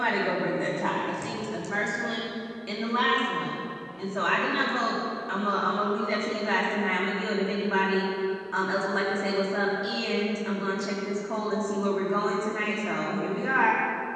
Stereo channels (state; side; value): identical; both; correlation 1.00